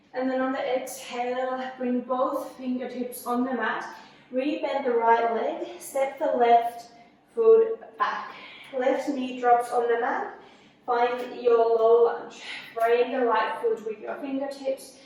And then on the exhale, bring both fingertips on the mat. Rebend the right leg, step the left foot back. Left knee drops on the mat. Find your low lunge. Frame the right foot with your fingertips.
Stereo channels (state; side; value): identical; both; correlation 1.00